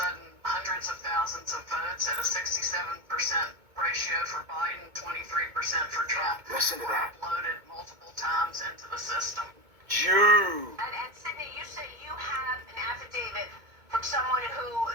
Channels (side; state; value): left; late; 2.2 ms